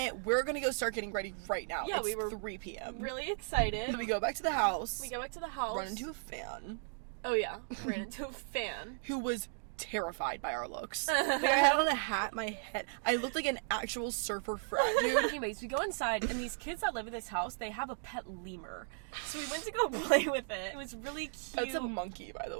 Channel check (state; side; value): silent; left; digital silence